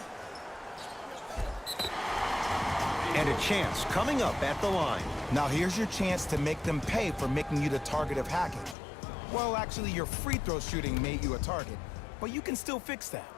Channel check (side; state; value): right; drops out; at 8.8 s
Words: And a chance coming up at the line. Now here's your chance to make them pay for making you the target of hacking. Well, actually, your free throw shooting made you a target, but you can still fix that.